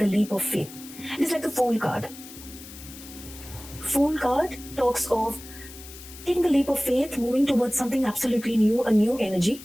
leap of faith. It's like the Fool card. Fool card talks of taking the leap of faith, moving towards something absolutely new, a new energy.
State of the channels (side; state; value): left; noise; hiss, 16 dB below the sound